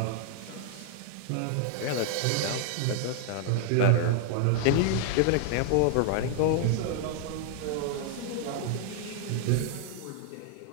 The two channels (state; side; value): different; both; correlation 0.00